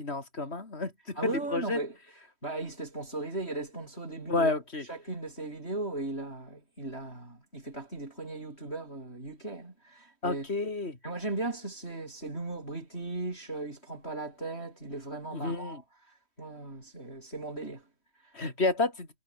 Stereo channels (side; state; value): right; late; 3.1 ms